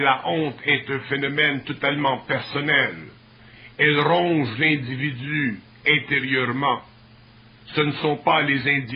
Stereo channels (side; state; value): both; identical; correlation 1.00